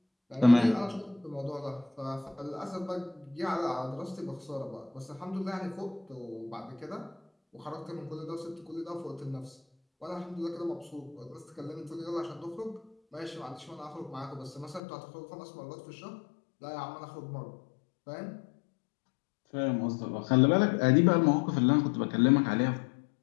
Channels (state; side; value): drops out; right; at 14.8 s